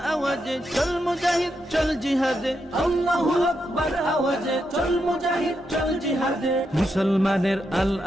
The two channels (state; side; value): normal; both; correlation 0.83